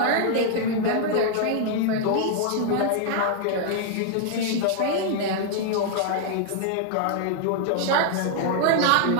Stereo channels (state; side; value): different; both; correlation 0.00